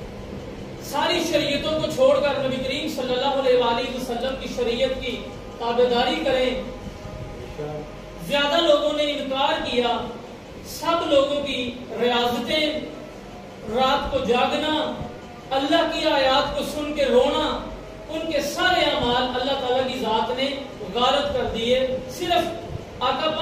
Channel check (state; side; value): identical; both; correlation 1.00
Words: ساری شریعتوں کو چھوڑ کر نبی کریم صلی اللہ علیہ وآلہ وسلم کی شریعت کی تابعداری کریں. زیادہ لوگوں نے انکار کیا. سب لوگوں کی ریاضتیں، رات کو جاگنا، اللہ کی آیات کو سن کے رونا، ان کے سارے اعمال اللہ تعالیٰ کی ذات نے غارت کر دیے صرف آقا